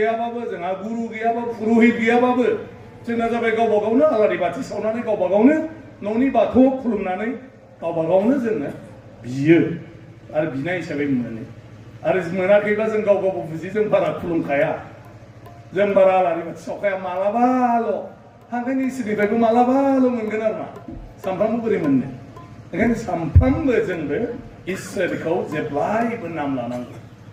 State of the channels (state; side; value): identical; both; correlation 1.00